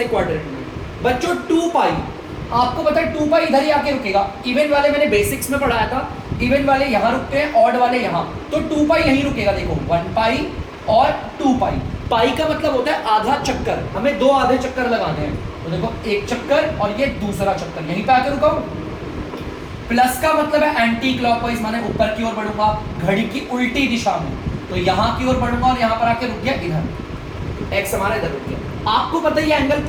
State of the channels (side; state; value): both; identical; correlation 1.00